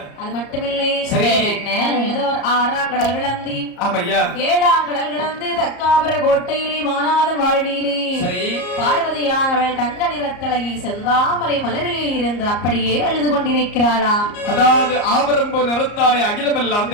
அது மட்டுமில்லை. சரி. ஏதோ ஒரு ஆறாம் கடல் கிடந்து ஆமையா ஏழாம் கடல் கிடந்து தக்காபுர கோட்டையிலே மாநாதன் வாழ்வியிலே பார்வதியானவள் தங்க நிறத்தழகி செந்தாமரை மலரிலே இருந்து அப்படியே அழுது கொண்டிருக்கிறாளா? அதாவது ஆபரம்பு நிறத்தாலை அகிலமெல்லாம்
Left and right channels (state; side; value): late; right; 34 ms